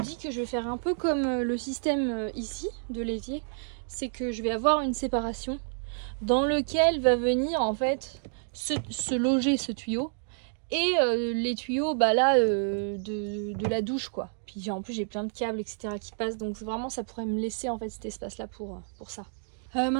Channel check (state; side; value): silent; left; digital silence